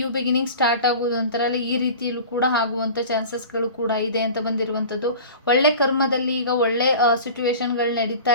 ಬಿಗಿನಿಂಗ್ ಸ್ಟಾರ್ಟ್ ಆಗುವುದು ಅಂತಾರಲ್ಲ, ಈ ರೀತಿಯಲ್ಲೂ ಕೂಡ ಆಗುವಂಥ ಚಾನ್ಸಸ್ಗಳು ಕೂಡ ಇದೆ ಅಂತ ಬಂದಿರುವಂಥದ್ದು. ಒಳ್ಳೆ ಕರ್ಮದಲ್ಲಿ ಈಗ ಒಳ್ಳೆ ಸಿಚುವೇಶನ್ಗಳು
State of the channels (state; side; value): inverted; both; correlation -0.39